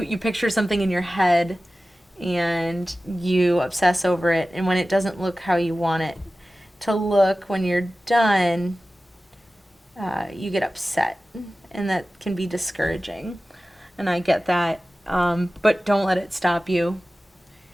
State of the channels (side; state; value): both; normal; correlation 0.96